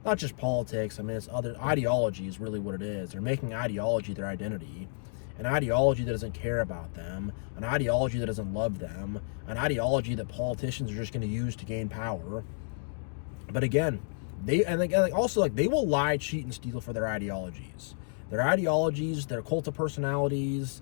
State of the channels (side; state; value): right; silent; digital silence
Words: not just politics, I mean, it's other ideology is really what it is. They're making ideology their identity. An ideology that doesn't care about them, an ideology that doesn't love them, an ideology that politicians are just going to use to gain power. But again, they will lie, cheat, and steal for their ideologies. Their ideologies, their cult of personalities,